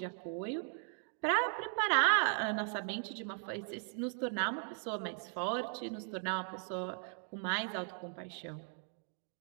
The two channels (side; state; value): left; silent; 53 dB below the other